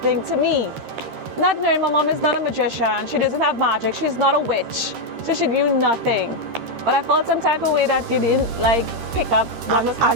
to me? Not knowing my mom is not a magician. She doesn't have magic. She's not a witch. So she knew nothing. But I felt some type of way that you didn't pick up what was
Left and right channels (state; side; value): late; left; 13 ms